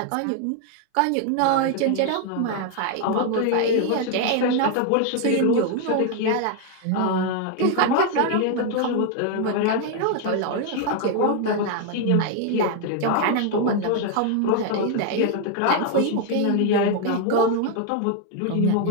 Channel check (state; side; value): different; both; correlation 0.00